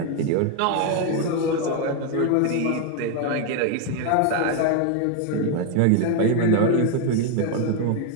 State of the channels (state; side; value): different; both; correlation 0.01